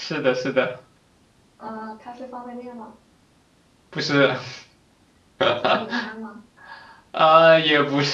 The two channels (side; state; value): both; identical; correlation 1.00